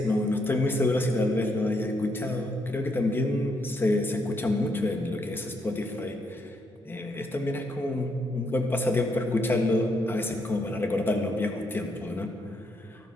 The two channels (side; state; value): both; normal; correlation 0.76